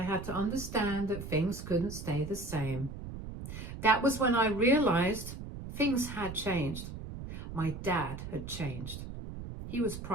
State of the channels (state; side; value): noise; right; rumble, 9 dB below the sound